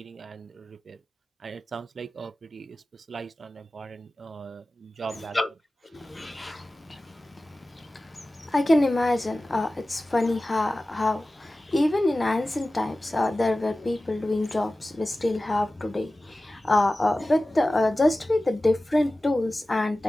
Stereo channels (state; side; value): normal; both; correlation 0.96